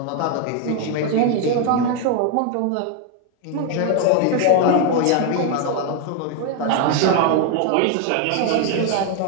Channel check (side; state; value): both; different; correlation 0.01